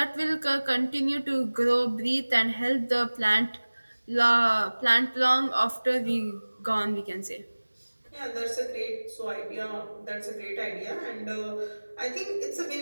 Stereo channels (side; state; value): both; inverted; correlation -1.00